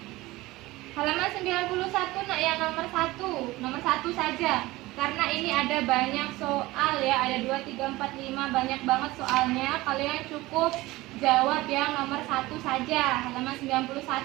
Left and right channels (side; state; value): left; quieter; 19.2 dB